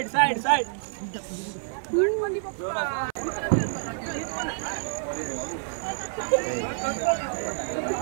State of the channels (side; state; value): left; silent; 55 dB below the other